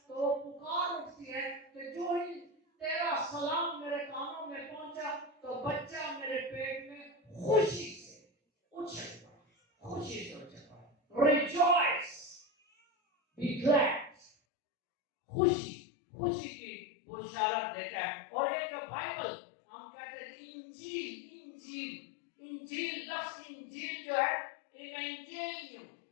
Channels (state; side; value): drops out; right; at 14.3 s